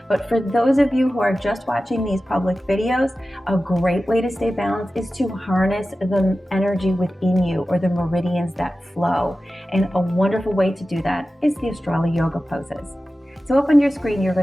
But for those of you who are just watching these public videos, a great way to stay balanced is to harness the energy within you, or the meridians that flow. And a wonderful way to do that is the Astrolo yoga poses. So up on your screen, you're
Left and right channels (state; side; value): normal; both; correlation 0.94